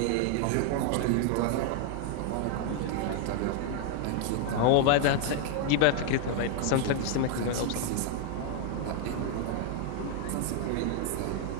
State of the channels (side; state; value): both; different; correlation 0.00